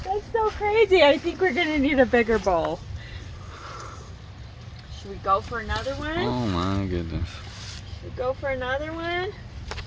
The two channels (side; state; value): both; identical; correlation 1.00